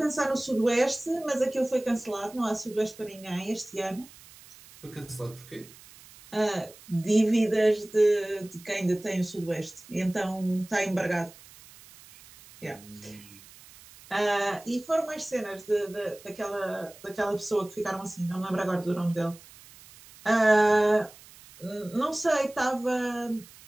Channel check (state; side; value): noise; right; hiss, 21 dB below the sound